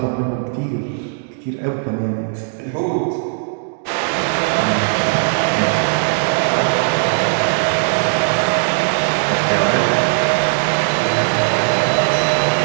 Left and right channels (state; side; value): silent; left; digital silence